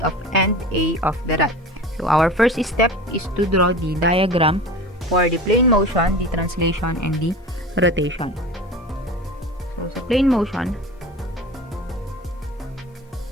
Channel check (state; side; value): normal; both; correlation 0.35